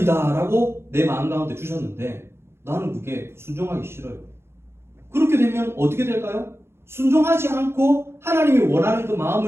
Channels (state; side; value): late; left; 0.12 ms